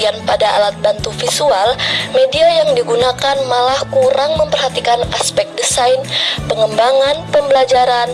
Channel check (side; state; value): both; identical; correlation 1.00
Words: pada alat bantu visual, media yang digunakan malah kurang memperhatikan aspek desain, pengembangan, pembelajaran,